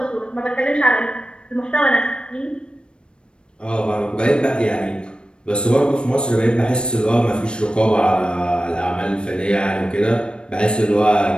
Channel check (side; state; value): right; late; 0.054 ms